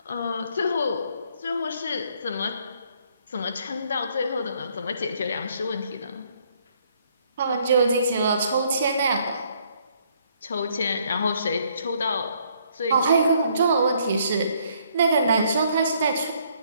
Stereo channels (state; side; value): inverted; both; correlation -0.67